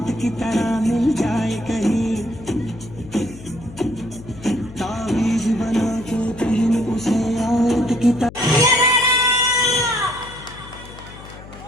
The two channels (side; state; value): left; noise; hum, 17 dB below the sound